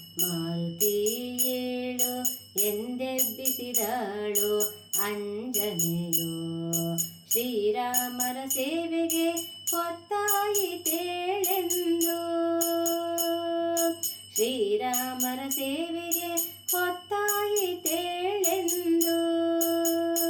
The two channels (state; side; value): identical; both; correlation 1.00